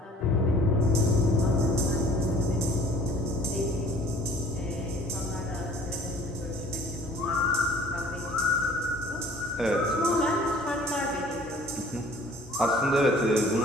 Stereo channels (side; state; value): both; normal; correlation 0.52